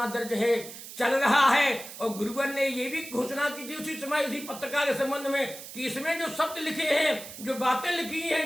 दर्ज है, चल रहा है। और गुरुवर ने ये भी घोषणा की थी उसी समय, उसी पत्रिका के संबंध में, कि इसमें जो शब्द लिखे हैं, जो बातें लिखी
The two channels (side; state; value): right; noise; hiss, 13 dB below the sound